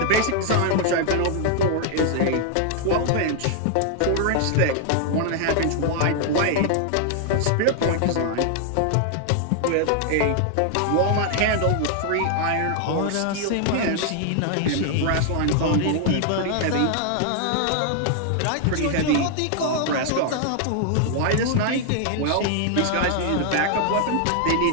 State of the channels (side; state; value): both; different; correlation 0.00